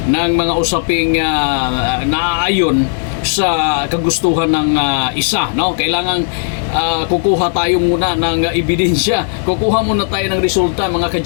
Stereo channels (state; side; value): silent; right; digital silence